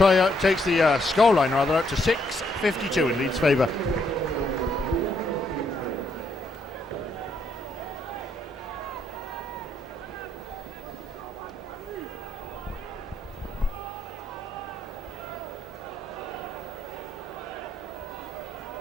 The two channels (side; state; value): both; normal; correlation 0.73